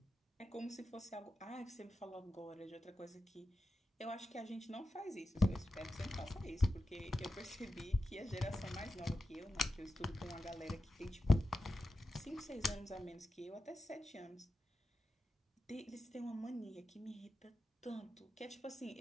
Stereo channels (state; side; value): normal; both; correlation 0.90